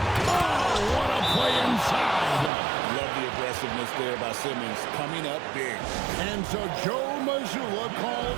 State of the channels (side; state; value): left; drops out; at 2.5 s